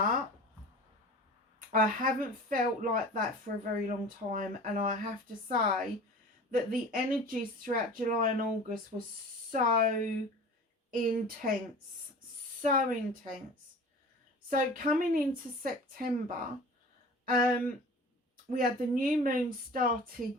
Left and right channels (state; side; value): normal; both; correlation 0.40